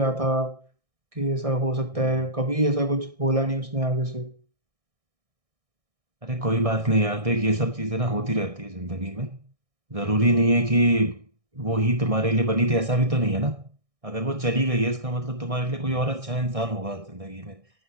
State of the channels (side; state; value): left; late; 1.6 ms